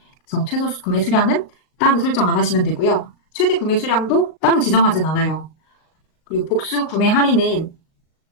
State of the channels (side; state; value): right; late; 38 ms